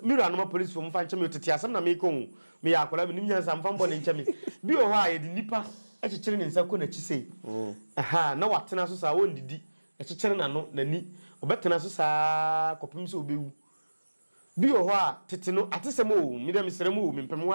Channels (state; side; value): inverted; both; correlation -1.00